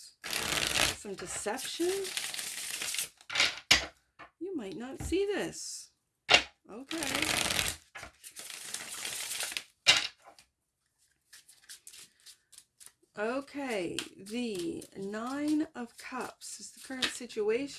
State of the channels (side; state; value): both; identical; correlation 1.00